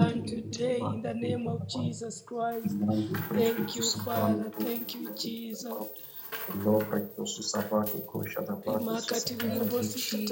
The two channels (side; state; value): both; identical; correlation 1.00